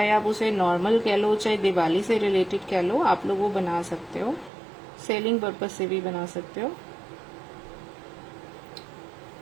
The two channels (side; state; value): left; drops out; at 4.5 s